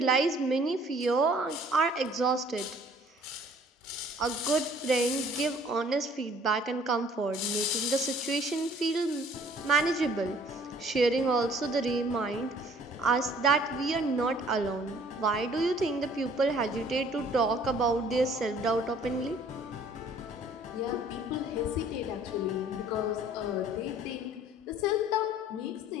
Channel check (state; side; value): normal; both; correlation 0.56